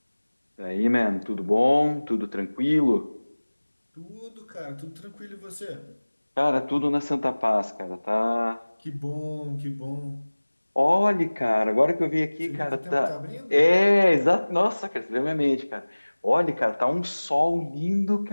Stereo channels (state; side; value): inverted; both; correlation -1.00